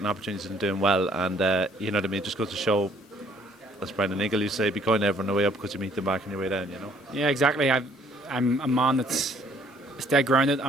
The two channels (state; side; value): normal; both; correlation 0.62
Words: opportunities and doing well, and you know what I mean. Just goes to show. As Brendan Eagle used to say, be kind to everyone on the way up because you meet them back on your way down, you know? Yeah, exactly. I'm a man that's dead grounded.